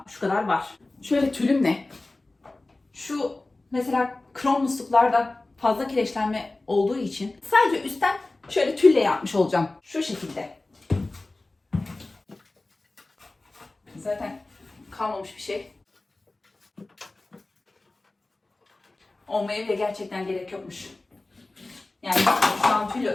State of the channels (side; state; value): right; quieter; 3.0 dB